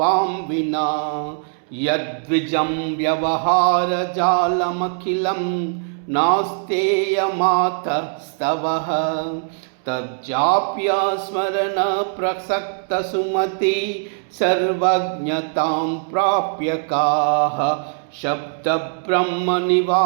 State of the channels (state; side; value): silent; left; 65 dB below the other